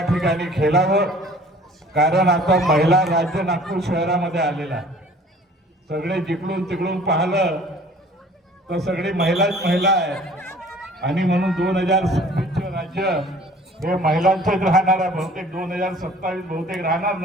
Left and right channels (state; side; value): normal; both; correlation 0.50